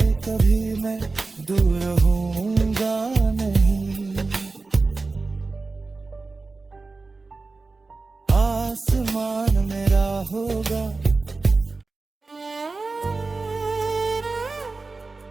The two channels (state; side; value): quieter; left; 3.7 dB